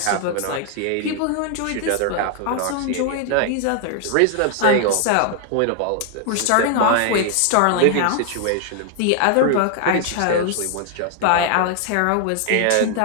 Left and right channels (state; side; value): different; both; correlation 0.00